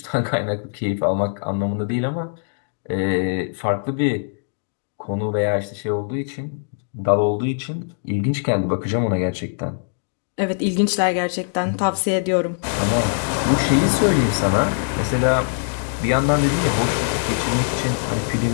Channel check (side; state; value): right; silent; digital silence